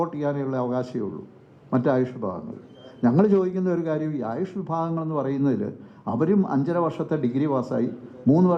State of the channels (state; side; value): identical; both; correlation 1.00